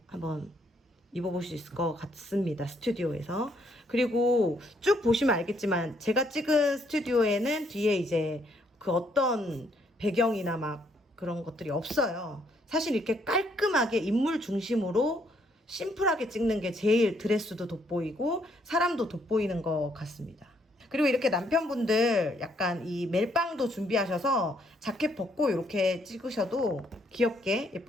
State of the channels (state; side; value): normal; both; correlation 0.70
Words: 한번 입어볼 수 있을 것 같습니다. 스튜디오에서. 그리고 쭉 보시면 알겠지만 제가 찍은 스튜디오에는 뒤에 이제 그 어떤 배경이나 막 그런 것들이 없어요. 사실 이렇게 깔끔하게 인물 중심으로 심플하게 찍는 게 제일 드레스도 돋보이고 사람도 돋보이는 것 같습니다. 그리고 이렇게 남편분들 약간 이 멜빵도 준비하셔서 자켓 벗고 이렇게 찍으셔도 귀엽게